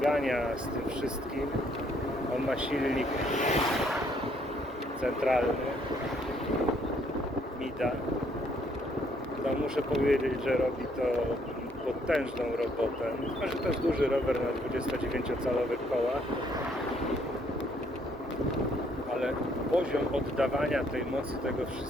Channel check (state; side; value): normal; both; correlation 0.67